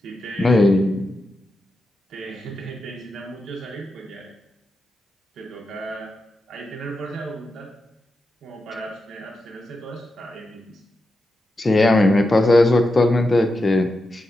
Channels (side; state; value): both; normal; correlation 0.88